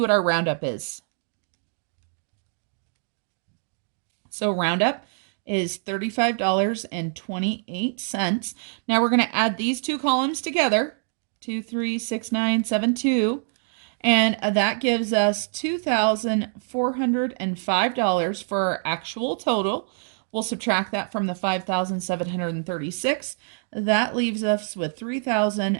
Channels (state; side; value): silent; left; digital silence